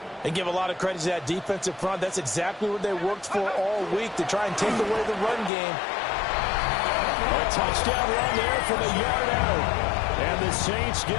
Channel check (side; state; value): right; drops out; at 5.5 s